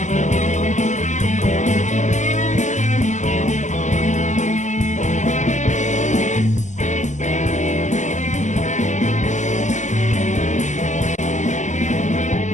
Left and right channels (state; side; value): late; right; 0.35 ms